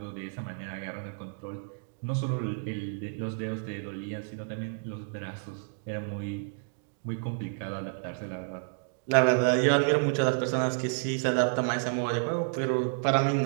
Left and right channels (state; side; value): silent; left; digital silence